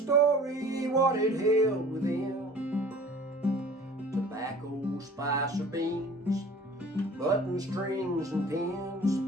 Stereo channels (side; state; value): both; normal; correlation 0.47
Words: what it held within. Tobacco, spice, or beans, button strings and